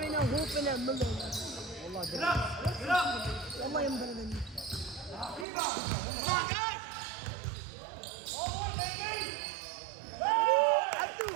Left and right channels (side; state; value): left; drops out; at 5.5 s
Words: now hooping at Miller. والله ينبغي مني.